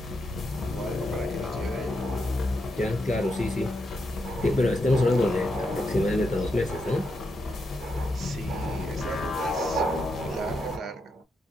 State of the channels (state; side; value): normal; both; correlation 0.83